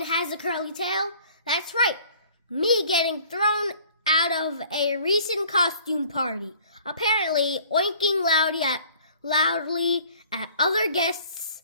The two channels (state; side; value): inverted; both; correlation -0.53